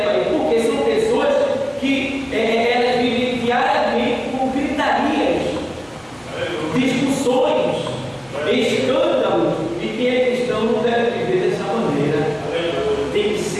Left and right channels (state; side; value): noise; right; hum, 29 dB below the sound